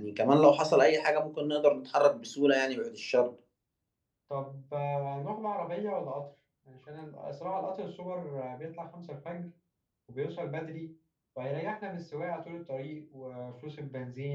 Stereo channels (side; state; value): both; identical; correlation 1.00